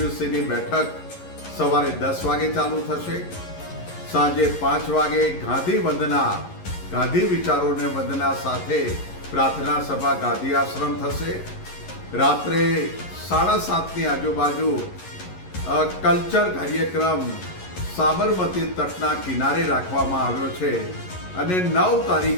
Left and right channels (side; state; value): right; late; 11 ms